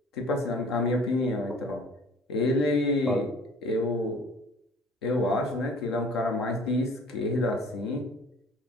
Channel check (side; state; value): both; normal; correlation 0.49